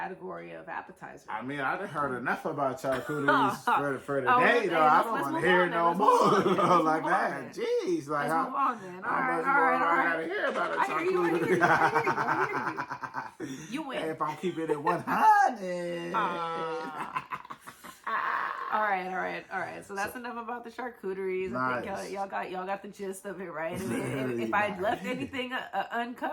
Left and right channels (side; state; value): both; identical; correlation 1.00